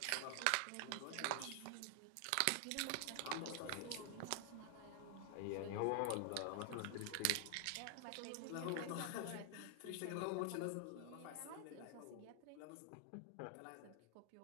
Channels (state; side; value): different; both; correlation 0.00